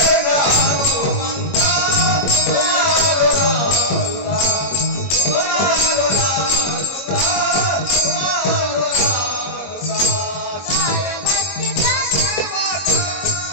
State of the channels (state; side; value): late; right; 21 ms